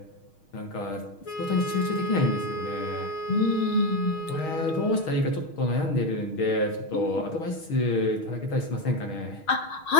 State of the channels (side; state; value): right; late; 6.4 ms